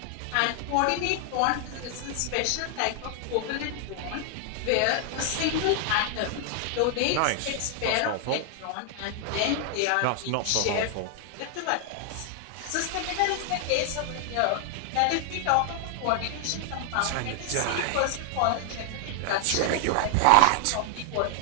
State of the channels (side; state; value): both; different; correlation 0.00